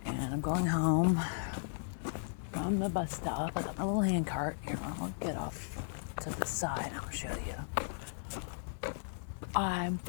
and I'm going home from the bus stop. I got my little hand cart. I'll get off to the side and I'll show you. I'm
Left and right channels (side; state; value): right; silent; 54 dB below the other